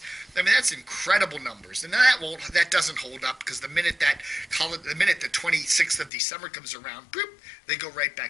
I mean, that's incredible numbers. And that doesn't hold up because the minute the 26th of December comes around, boop, they go right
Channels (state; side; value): drops out; right; at 6.1 s